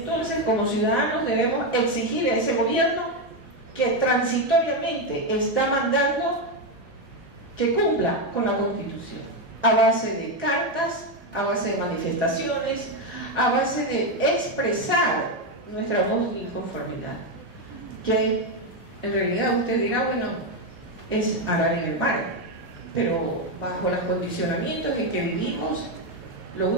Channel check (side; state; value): both; normal; correlation 0.07